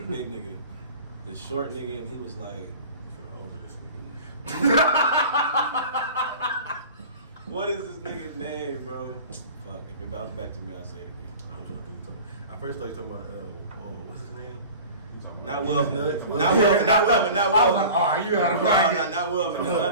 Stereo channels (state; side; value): inverted; both; correlation -0.40